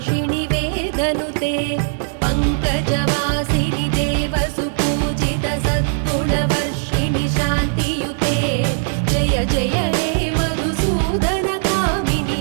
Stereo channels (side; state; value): left; silent; digital silence